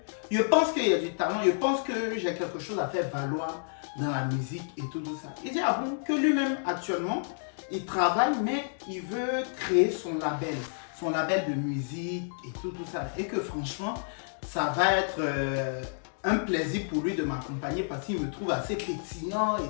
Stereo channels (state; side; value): silent; right; digital silence